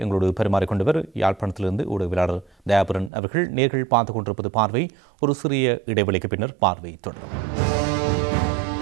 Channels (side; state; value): left; drops out; at 3.1 s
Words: எங்களோடு பரிமாறிக்கொண்டவர் யாழ்ப்பாணத்திலிருந்து ஊடகவியலாளர் தயாபரன் அவர்கள். நேர்கள் பார்த்துக் கொண்டிருப்பது பார்வை. ஒரு சிறிய இடைவெளிக்கு பின்னர் பார்வை தொடரும்.